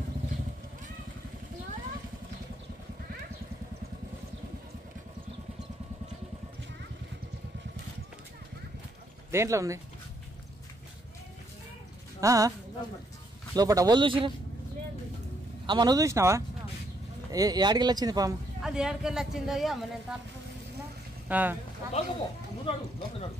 దేంట్లో ఉంది లోపల? వాళ్ళు చూసిరా? అమ్మ నువ్వు చూసినావా? ఏడికెళ్ళి వచ్చింది పాము? అది ఏడికెళ్ళి వచ్చిందో అమ్మ. నేను తలుపు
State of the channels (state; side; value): normal; both; correlation 0.73